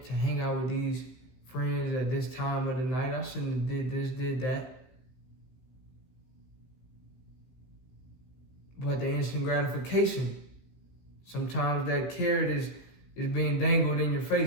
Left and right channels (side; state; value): right; late; 16 ms